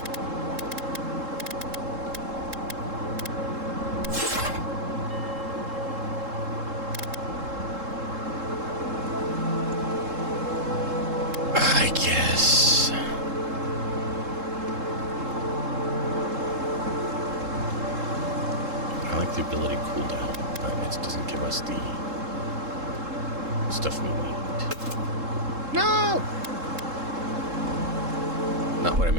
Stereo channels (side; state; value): left; late; 3.7 ms